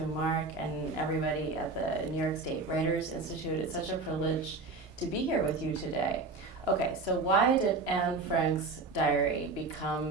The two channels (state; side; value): quieter; left; 3.7 dB